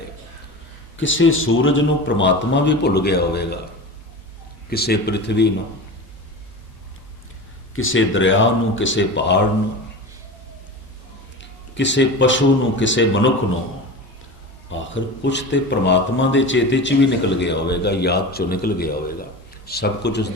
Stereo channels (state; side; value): normal; both; correlation 0.30